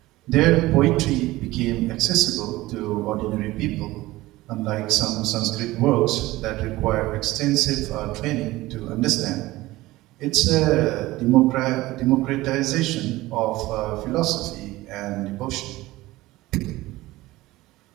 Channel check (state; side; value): quieter; left; 18.3 dB